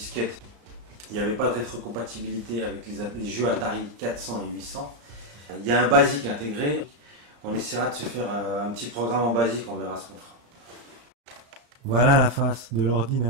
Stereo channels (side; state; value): left; late; 34 ms